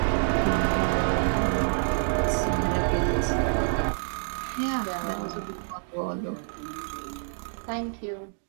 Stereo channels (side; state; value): left; silent; 60 dB below the other